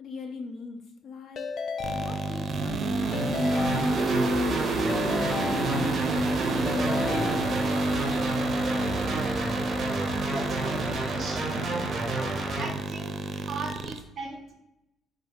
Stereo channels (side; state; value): both; normal; correlation 0.77